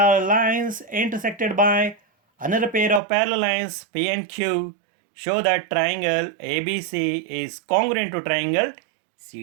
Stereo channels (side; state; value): left; drops out; at 3.0 s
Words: lines intersected by another pair of parallel lines P and Q. Show that triangle ABC is congruent to triangle